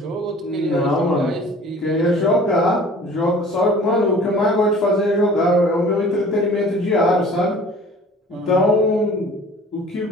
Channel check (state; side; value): normal; both; correlation 0.47